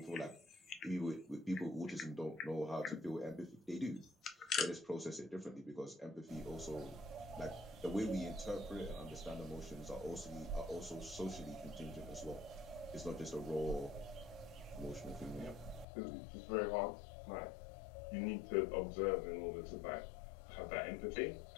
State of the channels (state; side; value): drops out; right; at 15.9 s